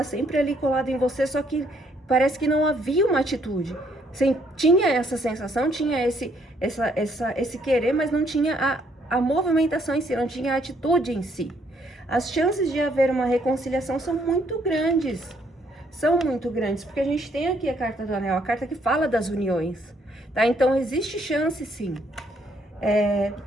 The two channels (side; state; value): both; normal; correlation 0.69